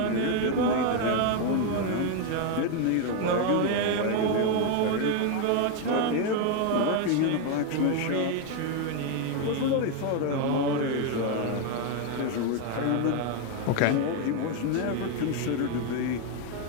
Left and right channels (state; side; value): different; both; correlation 0.01